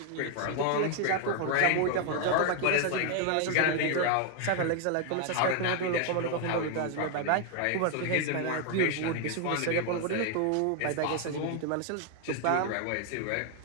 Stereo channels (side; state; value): both; different; correlation 0.00